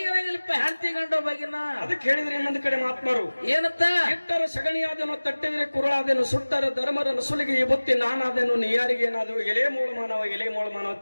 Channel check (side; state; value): both; inverted; correlation -1.00